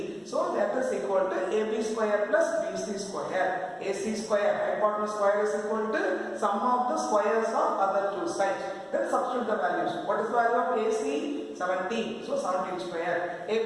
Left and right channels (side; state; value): both; identical; correlation 1.00